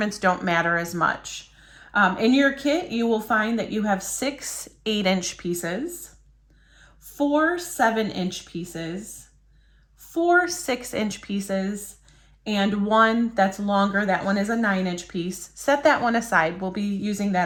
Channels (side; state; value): both; identical; correlation 1.00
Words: don't matter as much. In your kit, you will find that you have 6 8-inch pieces, 4 7-inch pieces, 4 6-inch pieces, and 1 that's longer. That one is a 9-inch piece. Set that one aside. We'll be using